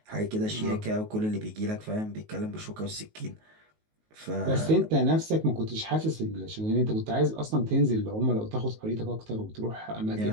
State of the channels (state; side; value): late; left; 19 ms